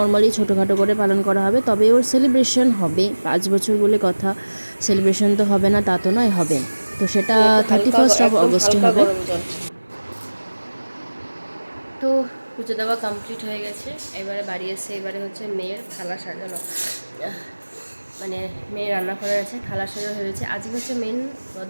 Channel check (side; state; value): both; inverted; correlation -1.00